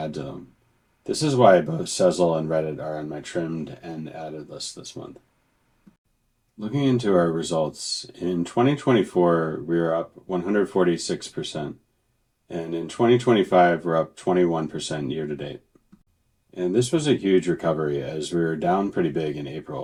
to them. This is why both Sezzle and Reddit are on my trimmed and added list this month. Looking into our results, in 2024, we were up 146%, and in 2025, we're up 21% year to date. And this was a huge recovery as we were down pretty big in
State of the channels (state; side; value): identical; both; correlation 1.00